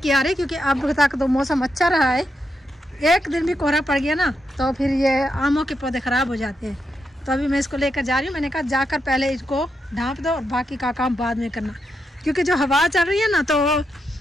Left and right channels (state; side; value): normal; both; correlation 0.83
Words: आ रही, क्योंकि अब तक तो मौसम अच्छा रहा है। एक दिन भी कोहरा पड़ गया ना तो फिर ये आमों के पौधे ख़राब हो जाते हैं। तो अभी मैं इसको लेकर जा रही हूँ। मैंने कहा जाकर पहले इसको ढाँप दो और बाकी का काम बाद में करना, क्योंकि जो हवा चल रही है ना तो